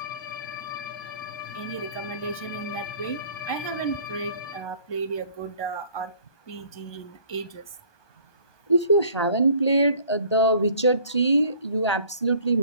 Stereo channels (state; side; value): late; right; 1.2 ms